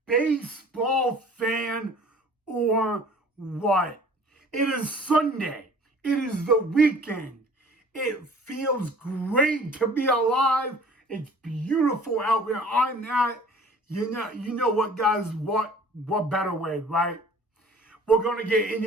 baseball fan or what? It is Sunday. It is the weekend. It feels great to be alive. It's beautiful out where I'm at. You know what, guys? What better way, right? We're going to get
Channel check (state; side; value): normal; both; correlation 0.49